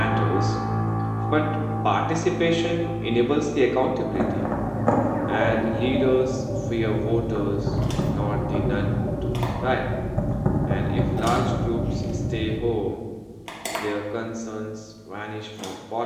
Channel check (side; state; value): both; identical; correlation 1.00